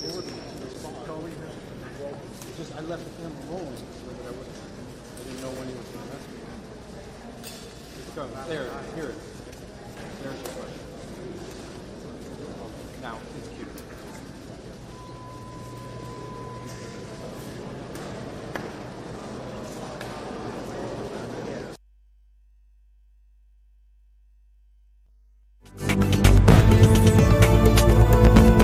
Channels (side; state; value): both; identical; correlation 1.00